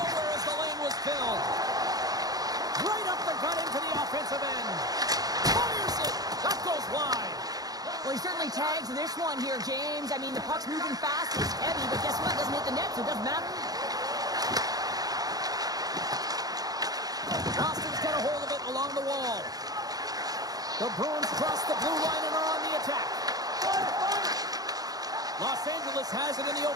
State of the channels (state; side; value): late; left; 0.18 ms